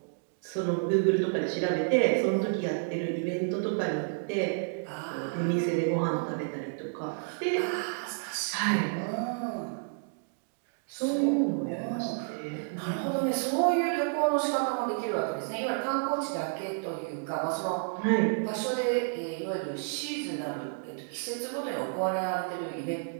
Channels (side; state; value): left; silent; digital silence